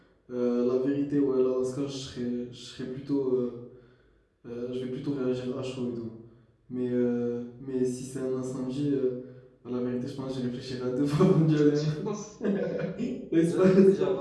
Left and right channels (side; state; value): both; identical; correlation 1.00